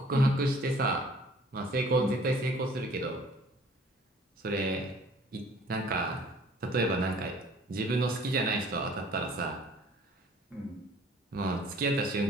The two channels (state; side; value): normal; both; correlation 0.53